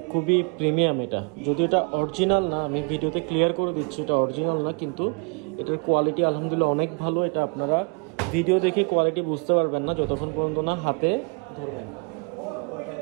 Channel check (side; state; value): left; quieter; 36.7 dB